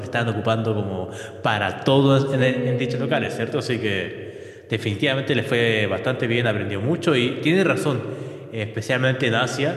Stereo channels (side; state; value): both; identical; correlation 1.00